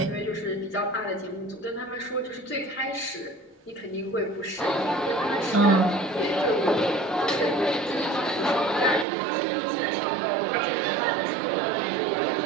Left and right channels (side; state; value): left; drops out; at 9.1 s